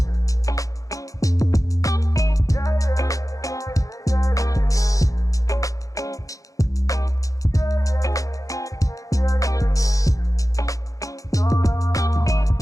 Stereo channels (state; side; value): late; right; 0.16 ms